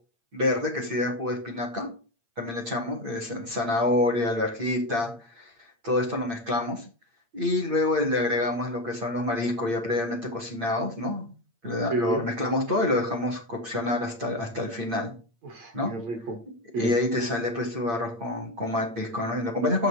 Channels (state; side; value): late; left; 8.7 ms